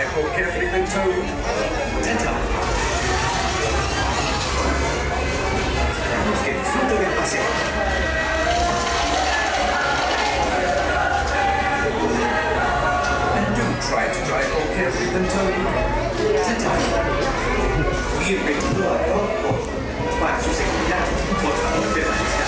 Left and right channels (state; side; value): identical; both; correlation 1.00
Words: more carefully than told. Ta-ta. Que disfrute del paseo. And do try to drive more carefully than told. Ta-ta. Bienvenido a Ichabod. Para su seguridad, por favor permanezca